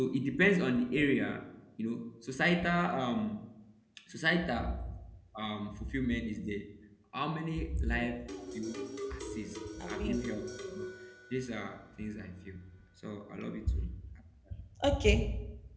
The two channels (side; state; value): both; identical; correlation 1.00